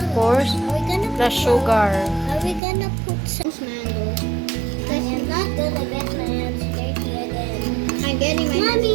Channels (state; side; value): drops out; left; at 2.6 s